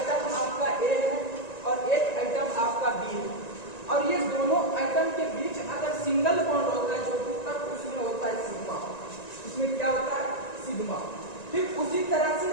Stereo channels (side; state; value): right; late; 1.9 ms